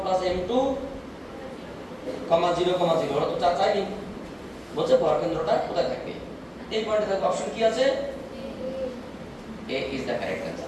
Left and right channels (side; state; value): both; identical; correlation 1.00